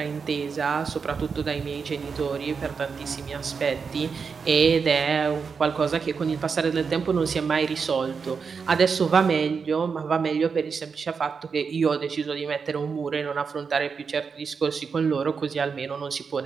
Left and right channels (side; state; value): left; quieter; 5.6 dB